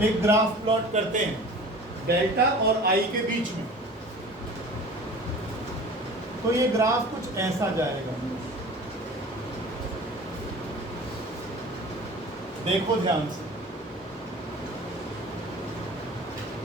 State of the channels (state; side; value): normal; both; correlation 0.42